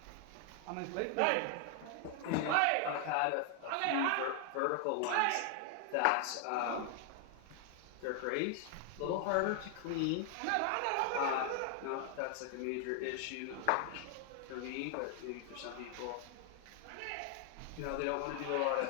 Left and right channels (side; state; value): both; different; correlation 0.00